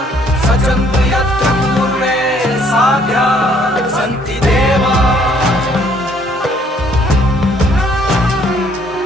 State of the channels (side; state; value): both; normal; correlation 0.63